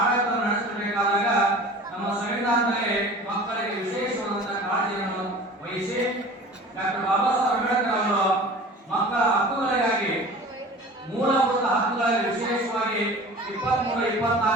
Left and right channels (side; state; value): both; normal; correlation 0.41